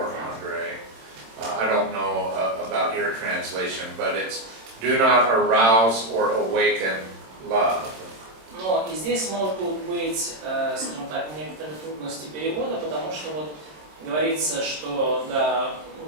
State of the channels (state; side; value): late; left; 26 ms